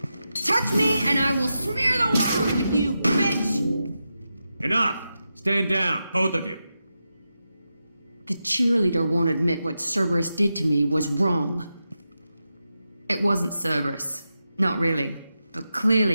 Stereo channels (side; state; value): both; inverted; correlation -0.89